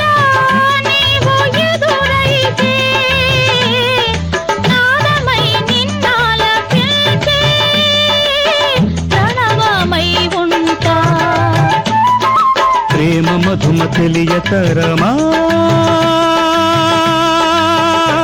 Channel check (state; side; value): identical; both; correlation 1.00